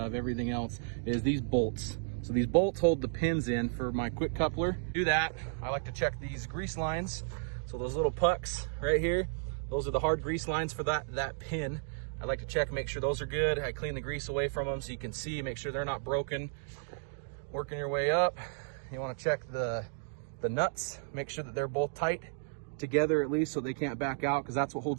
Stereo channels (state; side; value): silent; left; digital silence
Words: everything else, is these bolts. So these bolts hold the pins in for my quick coupler. To do that, I like to check these grease lines. So those little pucks right here, those are the hard grease lines for that pin. I like to check, make sure those are good. I clean the grease away from them so you can see, make sure they're not broken. Working your way up, you want to check the nuts, make sure that they're both tight together at least so they can't back out, because that's what